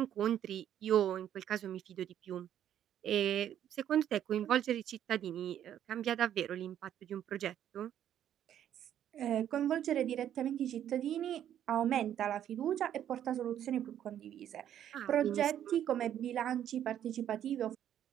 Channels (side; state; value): left; quieter; 10.5 dB